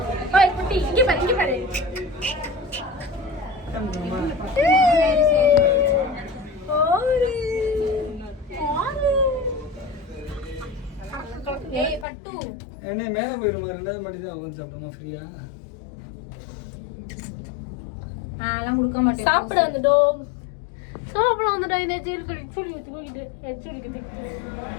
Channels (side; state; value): right; drops out; at 12.1 s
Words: ஓய் குட்டி, இங்க பாரு, இங்க பாரு. ஏய் பட்டு என்ன மேல போயிடுமா? ரெண்டாவது மாடி தான் உட்காந்து சாப்பிடுமா ஃப்ரீயா? அதெல்லாம் கொடுக்க மாட்டேன். சாப்பிட வந்துட்டோம். சாப்பிட வந்துட்டோம். இந்த சீர்கடி சுடுக்கு தூக்கிட்டு எச்சுடிக்கு